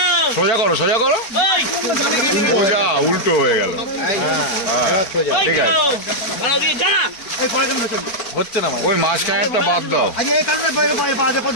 সোজা করো, সোজা করো, সোজা উল্টো হয়ে গেল। হ্যাঁ ঠিক আছে, হচ্ছে না ওই মাঝখানেরটা বাদ দাও।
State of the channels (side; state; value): right; late; 4.4 ms